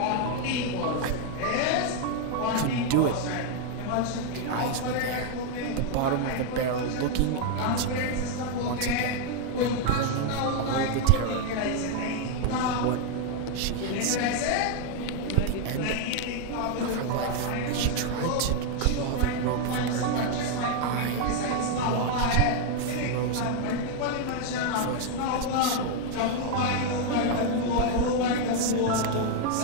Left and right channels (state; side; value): different; both; correlation 0.00